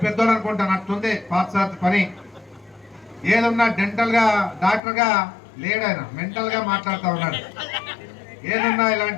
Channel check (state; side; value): drops out; right; at 4.8 s